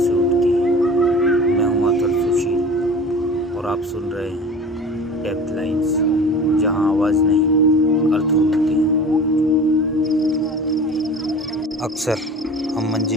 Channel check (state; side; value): normal; both; correlation 0.39